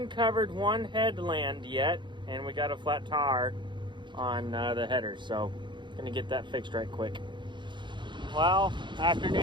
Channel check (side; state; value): left; late; 0.23 ms